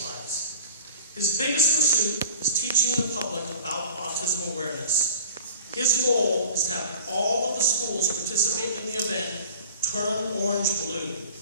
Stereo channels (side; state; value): both; inverted; correlation -0.42